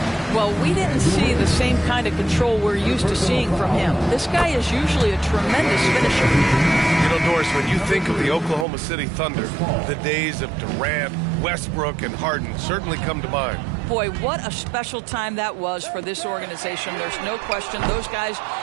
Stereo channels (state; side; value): drops out; left; at 8.7 s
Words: Well, we didn't see the same kind of control we're used to seeing from him. This guy is usually a tremendous finisher. You know, Doris, when you think of the Oklahoma City Thunder, the days of Durant, Westbrook, and Harden certainly come to mind. Boy, what a special time that was for this organization. There's no question. Those guys